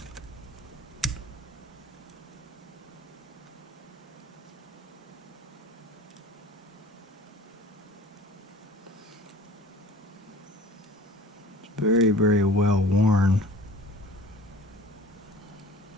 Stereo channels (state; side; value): normal; both; correlation 0.45